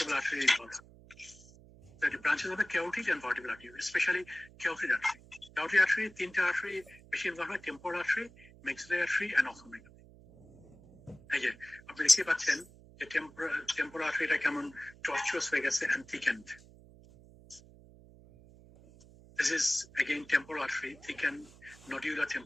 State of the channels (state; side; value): noise; right; hum, 23 dB below the sound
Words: আর্টারি ইনভলভ। তো এটা ব্রাঞ্চেস হবে carotid and vertebral artery, specially carotid artery. Carotid artery তিনটা আর্টারি বেশি ইনভলভ হয়, temporal artery, maxillary artery and ophthalmic. এই যে আপনি দেখতে পাচ্ছেন যে টেম্পোরাল আর্টারিটা কেমন টর্চুয়াস হয়ে গেছে and thickened. This is again temporal artery, thickened nodular